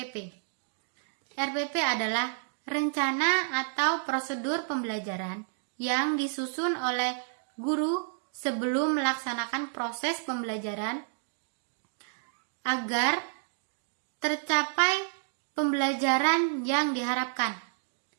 RPP adalah rencana atau prosedur pembelajaran yang disusun oleh guru sebelum melaksanakan proses pembelajaran agar tercapai pembelajaran yang diharapkan.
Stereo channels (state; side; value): silent; left; digital silence